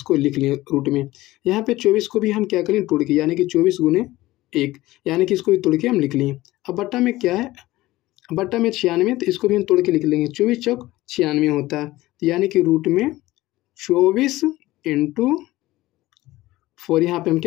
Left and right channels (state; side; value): quieter; right; 17.6 dB